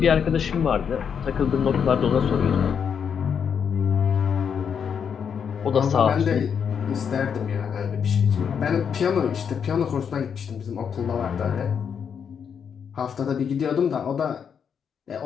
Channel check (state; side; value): quieter; right; 7.2 dB